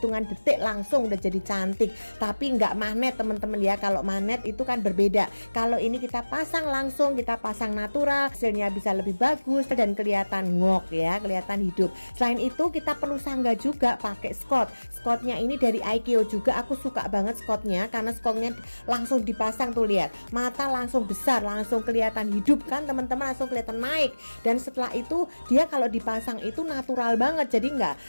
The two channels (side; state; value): both; inverted; correlation -1.00